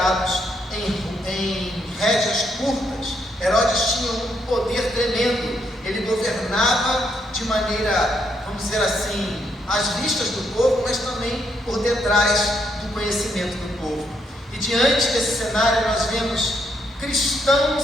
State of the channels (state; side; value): normal; both; correlation 0.76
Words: em rédeas curtas. Herodes tinha um poder tremendo, ele governava de maneira, vamos dizer assim, às vistas do povo, mas também por detrás do conhecimento do povo. E diante desse cenário nós vemos